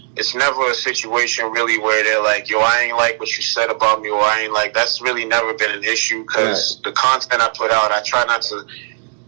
It's never a situation really where they're like, yo, I ain't like what you said about me, or I ain't like, that's really never been an issue because the content I put out, I try not to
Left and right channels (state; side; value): silent; left; digital silence